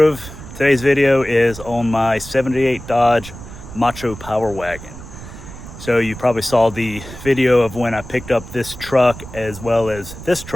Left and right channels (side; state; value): right; noise; rumble, 14 dB below the sound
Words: Today's video is on my 78 Dodge MACHO Power Wagon. So you probably saw the video of when I picked up this truck as well as this